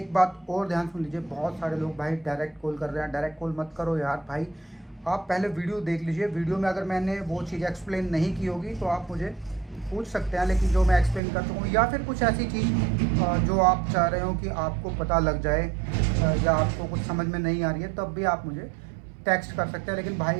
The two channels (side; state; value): left; drops out; at 11.2 s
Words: बात और ध्यान सुन लीजिए, बहुत सारे लोग भाई डायरेक्ट कॉल कर रहे हैं। डायरेक्ट कॉल मत करो यार भाई, आप पहले वीडियो देख लीजिए। वीडियो में अगर मैंने वो चीज़ एक्सप्लेन नहीं की होगी तो आप मुझे पूछ सकते हैं, लेकिन जो मैं एक्सप्लेन कर चुका हूँ, या फिर कुछ ऐसी चीज़ जो आप चाह रहे हो कि आपको पता लग जाए, या आपको कुछ समझ में नहीं आ रही है, तब भी आप मुझे टेक्स्ट कर सकते हैं। लेकिन